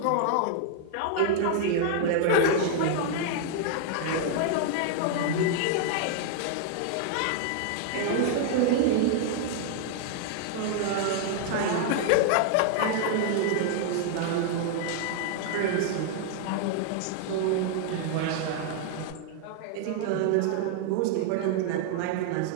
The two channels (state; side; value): different; both; correlation 0.00